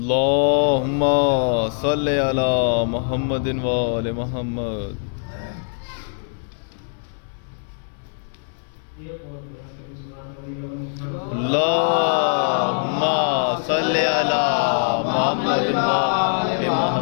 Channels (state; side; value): silent; right; digital silence